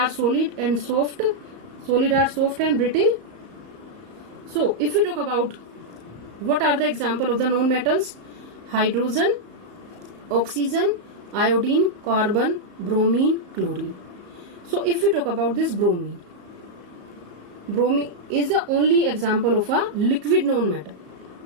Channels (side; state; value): left; late; 34 ms